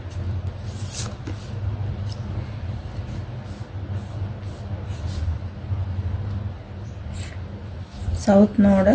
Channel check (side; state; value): both; identical; correlation 1.00